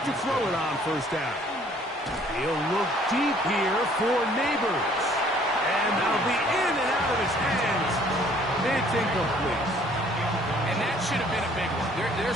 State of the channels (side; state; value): both; normal; correlation 0.58